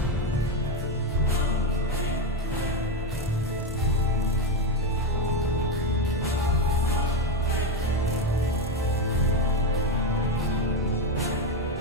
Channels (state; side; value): normal; both; correlation 0.10